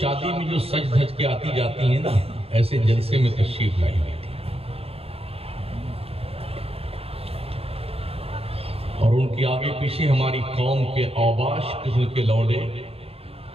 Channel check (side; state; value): left; late; 0.29 ms